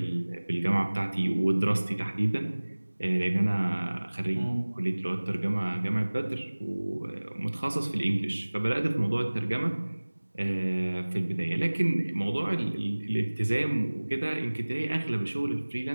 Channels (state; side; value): inverted; both; correlation -1.00